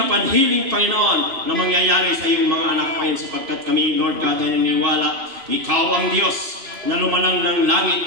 upon healing, Panginoon, na mangyayari sa iyong mga anak, Panginoon, sapagkat kami, Lord God, ay naniniwala, Ikaw ang Diyos na lumanang ng langit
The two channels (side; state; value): left; late; 2.5 ms